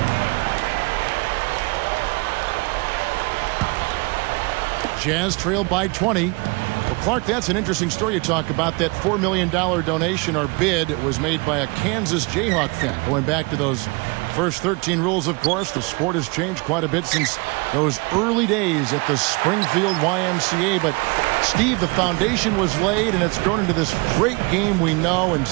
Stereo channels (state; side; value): quieter; left; 28.7 dB